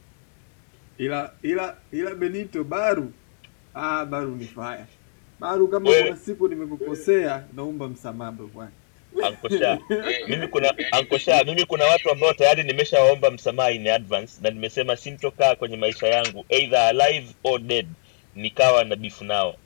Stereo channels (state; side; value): silent; right; digital silence